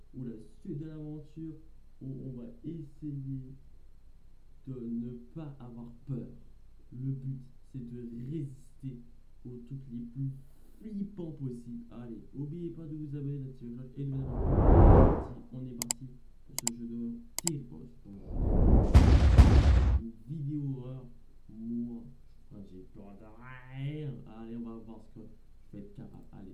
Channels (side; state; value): both; identical; correlation 1.00